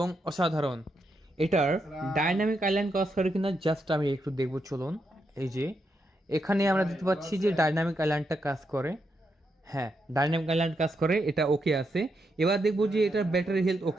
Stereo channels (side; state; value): both; normal; correlation 0.82